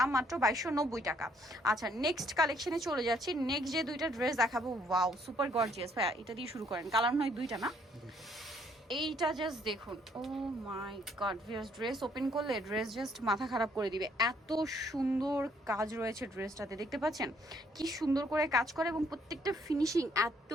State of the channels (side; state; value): both; normal; correlation 0.67